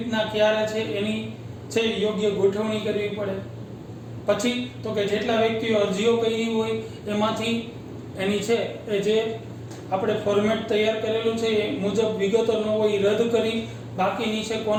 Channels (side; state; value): both; identical; correlation 1.00